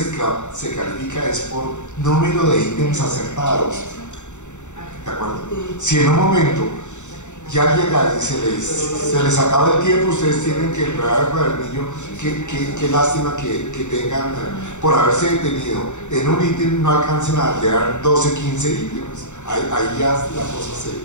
califica es por número de ítems acertados. ¿De acuerdo? Si en un momento ya llega y se les acaba el tiempo, ustedes tienen que entregar el cuadernillo, qué lástima que tengan, por haberse detenido en un ítem, no alcancen a llegar 12, 15 ítems. Ahí ya la cosa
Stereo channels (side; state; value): right; late; 0.84 ms